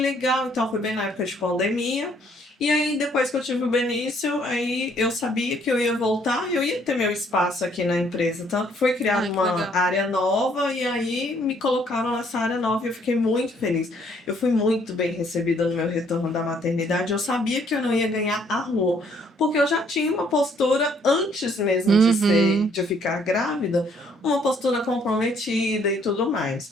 então foi bem na época de pandemia. E aí, depois que eu tive o Benício, aí eu sabia que eu ia voltar, eu ia ter meu espaço aqui na empresa. Tanto que foi criada Ai, que uma legal. área nova e aí me colocaram nessa área nova e eu fiquei muito feliz. Eu fui muito bem recebida no meu retorno da maternidade. Eu sabia que eu não ia ganhar a rua, porque eu já tinha uma postura antes mesmo de ficar grávida, uma postura comprometida e tudo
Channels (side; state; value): both; normal; correlation 0.65